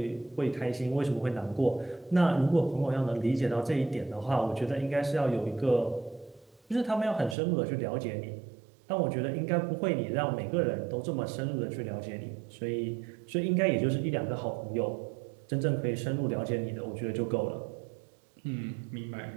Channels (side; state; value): left; drops out; at 7.4 s